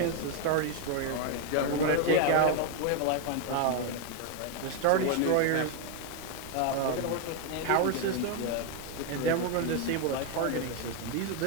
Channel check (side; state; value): both; different; correlation 0.01